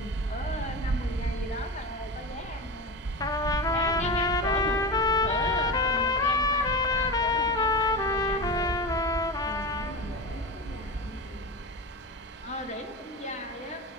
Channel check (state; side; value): normal; both; correlation 0.24